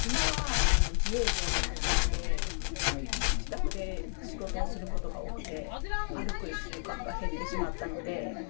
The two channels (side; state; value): right; silent; digital silence